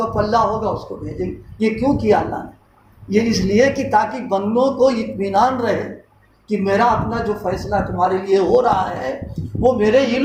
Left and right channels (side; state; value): both; identical; correlation 1.00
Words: پلہ ہوگا اس کو بھیجیں گے. یہ کیوں کیا اللہ نے؟ یہ اس لیے کہ تاکہ بندوں کو اطمینان رہے کہ میرا اپنا جو فیصلہ تمہارے لیے ہو رہا ہے وہ میرے